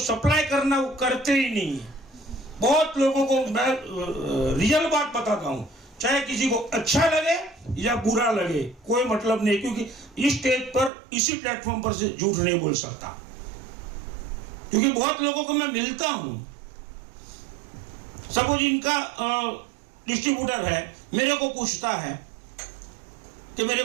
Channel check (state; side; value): drops out; left; at 10.9 s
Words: करना वो करते ही नहीं है। बहुत लोगों को मैं रियल बात बताता हूं, चाहे किसी को अच्छा लगे या बुरा लगे, कोई मतलब नहीं, क्योंकि इस स्टेज पर, इसी प्लेटफॉर्म पर से झूठ नहीं बोल सकता, क्योंकि बहुत लोगों को मैं मिलता हूं। सपोज इनका डिस्ट्रीब्यूटर है, मेरे को पूछता है कि मेरे